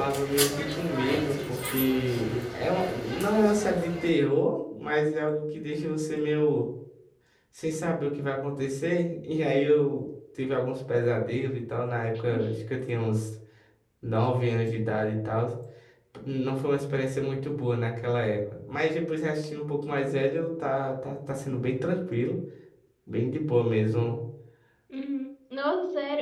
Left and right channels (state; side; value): identical; both; correlation 1.00